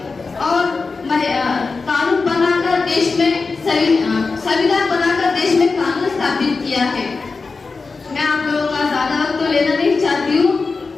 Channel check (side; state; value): right; quieter; 4.3 dB